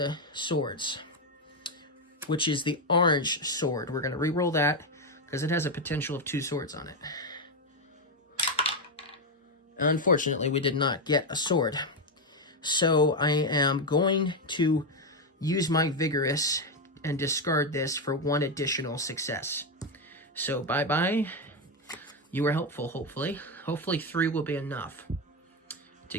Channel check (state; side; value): normal; both; correlation 0.07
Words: swords, which is the orange sword. We're going to re-roll that because it has a potential of 2 swords on it. Unfortunately, we did not get a sword. So I am going to use my Vigorous and discard this for 1 additional success. So bye-bye. You were helpful, hopefully. Hopefully 3 will be enough to